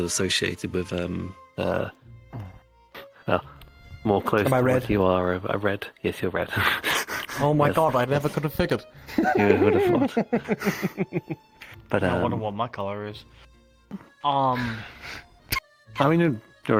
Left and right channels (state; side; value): identical; both; correlation 1.00